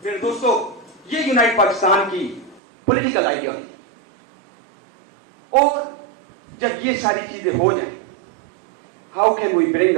میرے دوستو, یہ یونائٹ پاکستان کی پولیٹیکل آئیڈیالوجی. اور جب یہ ساری چیزیں ہو جائیں, how can we bring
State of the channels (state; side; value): drops out; left; at 2.6 s